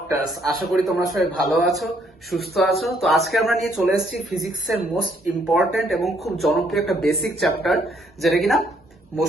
আশা করি তোমরা সবাই ভালো আছো, সুস্থ আছো। তো আজকে আমরা নিয়ে চলে এসেছি ফিজিক্সের মোস্ট ইম্পর্টেন্ট এবং খুব জনপ্রিয় একটা বেসিক চ্যাপ্টার, যেটা কিনা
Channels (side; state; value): both; normal; correlation 0.69